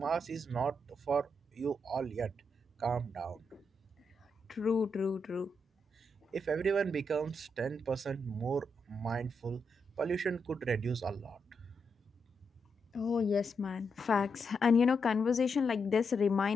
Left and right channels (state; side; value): normal; both; correlation 0.82